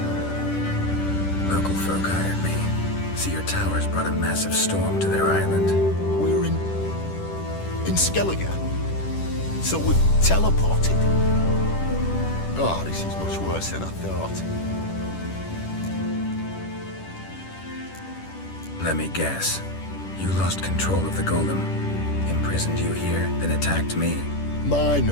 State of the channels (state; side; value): late; right; 10 ms